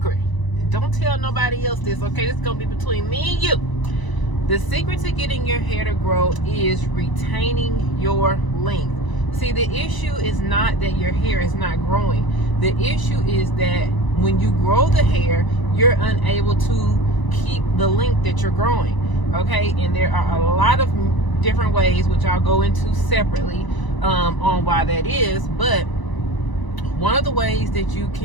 don't tell nobody else this, okay? This is gonna be between me and you. The secret to getting your hair to grow is retaining your length. See, the issue is not that your hair is not growing. The issue is that when you grow the hair, you're unable to keep the length that you're growing, okay? And there are a lot of different ways, which I'll go into separately on why that is. But one of the ways that you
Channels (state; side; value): late; right; 1.0 ms